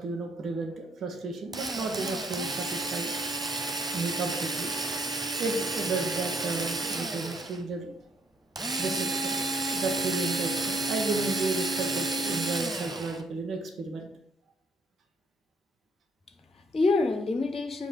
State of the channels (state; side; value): normal; both; correlation 0.67